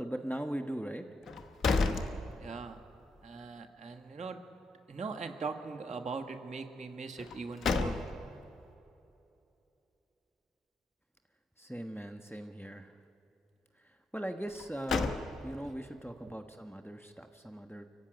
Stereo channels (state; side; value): normal; both; correlation 0.81